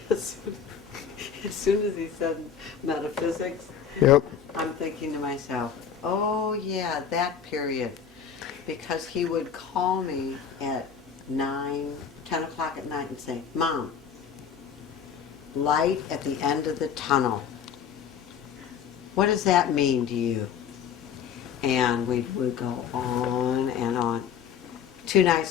metaphysics, Yep. I'm thinking to myself, oh yeah, that period. Because he would call me at 9, 10 o'clock at night and say, Mom, light at the end of the tunnel. What does that mean to you? And we would go on and on. 2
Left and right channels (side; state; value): right; quieter; 7.5 dB